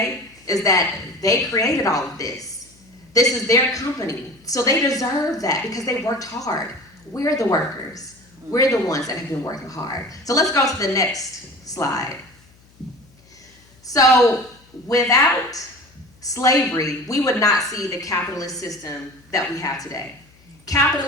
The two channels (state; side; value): noise; left; hum, 29 dB below the sound